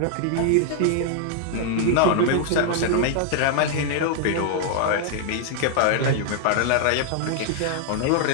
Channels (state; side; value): different; both; correlation 0.00